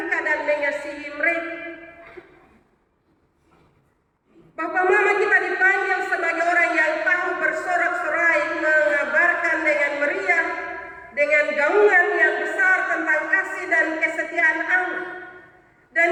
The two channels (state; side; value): identical; both; correlation 1.00